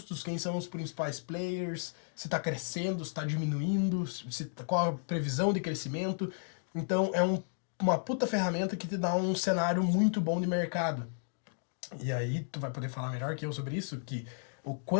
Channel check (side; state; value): right; silent; digital silence